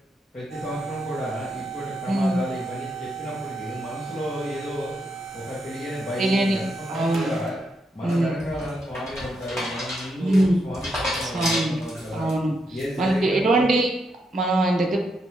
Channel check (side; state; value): both; normal; correlation 0.81